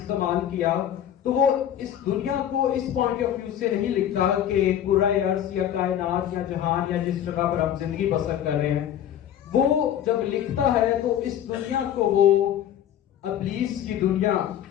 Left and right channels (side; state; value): right; quieter; 10.5 dB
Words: किया, तो वो इस दुनिया को इस पॉइंट ऑफ व्यू से नहीं लिखता कि कुराए अर्ज़ या कायनात या जहान या जिस जगह पर हम जिंदगी बसर कर रहे हैं। वो जब लिखता है तो इस दुनिया को वो इब्लीस की दुनिया